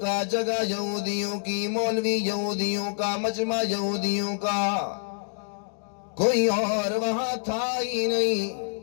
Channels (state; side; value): silent; right; digital silence